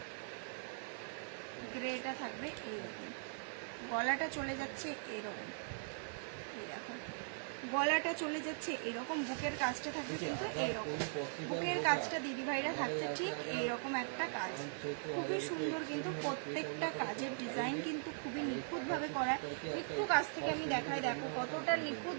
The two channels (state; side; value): silent; left; digital silence